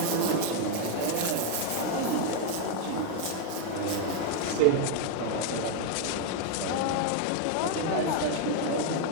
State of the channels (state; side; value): different; both; correlation 0.00